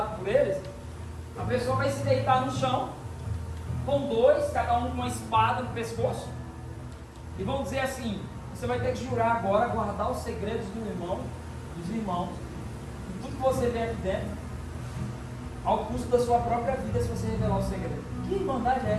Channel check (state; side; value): identical; both; correlation 1.00